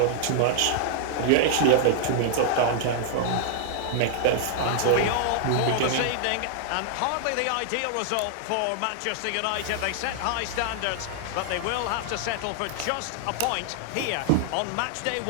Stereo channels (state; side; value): different; both; correlation 0.00